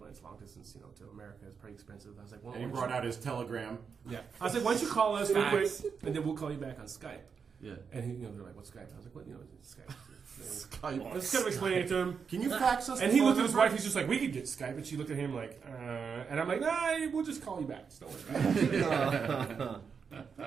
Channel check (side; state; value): left; quieter; 6.1 dB